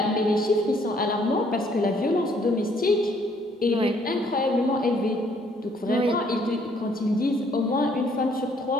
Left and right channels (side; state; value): both; normal; correlation 0.65